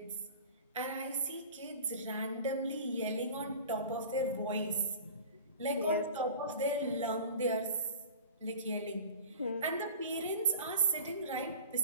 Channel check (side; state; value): both; inverted; correlation -0.39